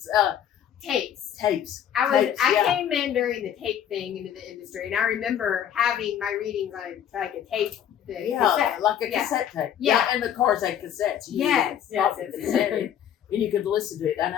Tapes. tapes. I Tapes, yeah. came in during the tape thing into the industry, and I remember having my readings on like a tape. Cassette. Like a Yeah. cassette tape. Yeah. And the cars had cassettes. You Yes, could pop yes, the yes. cassette in, and you could listen to it. And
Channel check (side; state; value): right; quieter; 9.7 dB